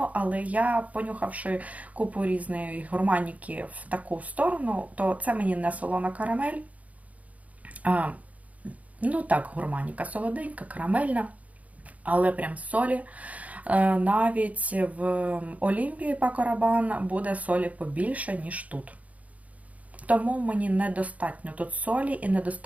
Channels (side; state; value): left; late; 0.070 ms